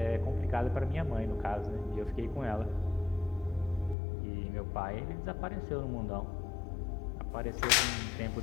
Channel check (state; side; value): drops out; right; at 4.0 s